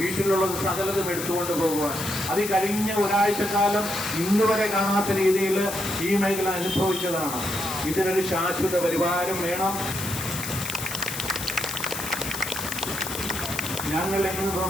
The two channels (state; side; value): noise; left; hiss, 7 dB below the sound